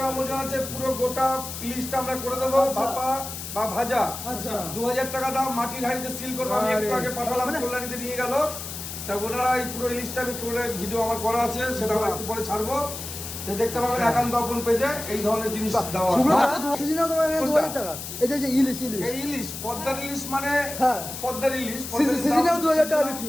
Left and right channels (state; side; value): noise; left; hiss, 8 dB below the sound